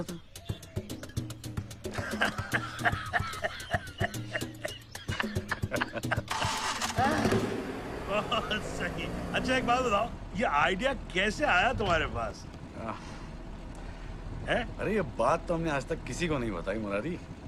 था? बहुत सही। अच्छा एक बात बताओ, ये आइडिया कैसे आया तुम्हारे पास? है? अरे ये बात तो हमने आज तक किसी को नहीं बताई मुरारी।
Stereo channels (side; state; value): both; identical; correlation 1.00